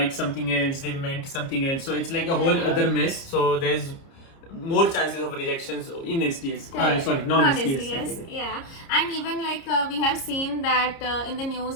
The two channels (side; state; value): right; late; 30 ms